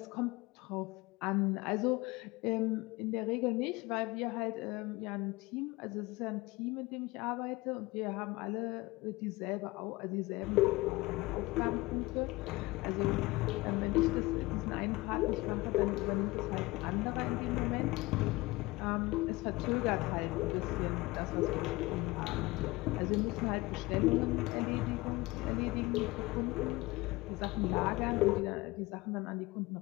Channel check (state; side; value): quieter; right; 21.7 dB